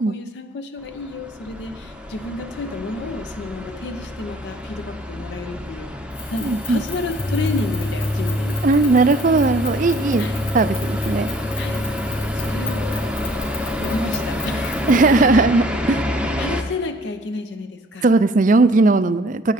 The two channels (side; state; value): both; normal; correlation 0.56